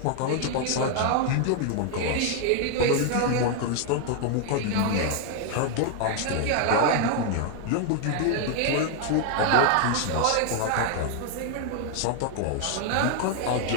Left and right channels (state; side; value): different; both; correlation 0.00